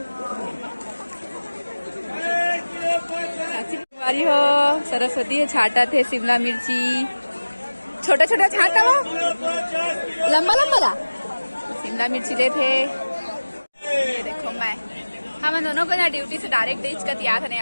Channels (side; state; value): both; inverted; correlation -1.00